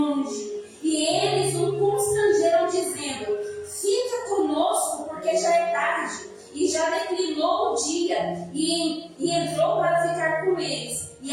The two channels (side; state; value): both; identical; correlation 1.00